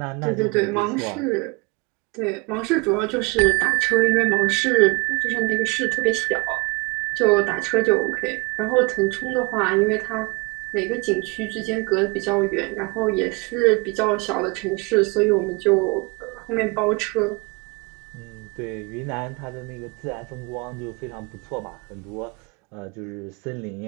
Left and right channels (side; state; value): left; quieter; 28.4 dB